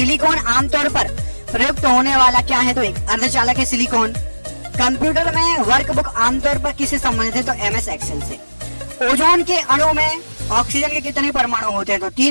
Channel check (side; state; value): both; inverted; correlation -1.00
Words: आमतौर पर प्रयुक्त होने वाला क्या है? तो एक अर्धचालक है सिलिकॉन। कंप्यूटर में वर्कबुक आमतौर पर किससे संबंधित है? तो MS एक्सेल से। ओजोन के अणु में ऑक्सीजन के कितने परमाणु होते हैं? तो